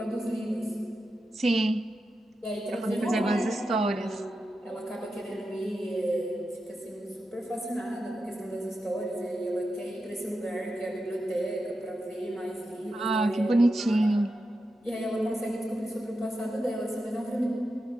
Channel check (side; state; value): both; normal; correlation 0.89